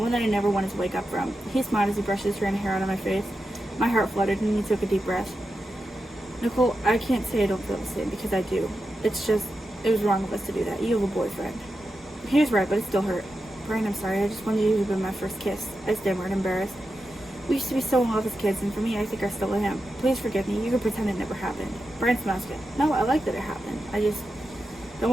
that I never wanted to wake up from. He smiled as he brushed his hair out of my face. My heart fluttered, and he took a deep breath. Nicole, I can't say I don't feel the same, because I do. It's just, it was wrong of us to do that. You have a boyfriend. He was right, but it still hurt. Brian, I'm sorry. I just wanted you to be my first kiss. I stammered, embarrassed. We used to be so in love as kids, and for me, I think I still am. Please forgive me. You can pretend it never happened. Brian smiled again. No, I like that it happened. I just don't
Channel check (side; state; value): both; normal; correlation 0.89